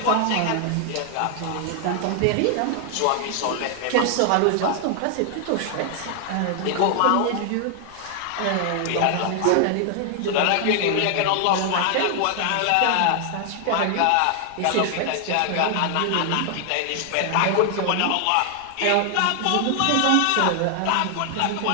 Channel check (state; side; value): different; both; correlation 0.00